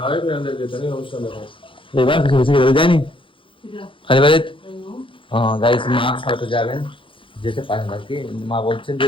এবার কিছু কিছু জানি কালীবাড়িতে গাইস মা হয়তো যাবেন যেতে পারেন আর কি মা বলছেন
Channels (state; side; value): late; right; 0.25 ms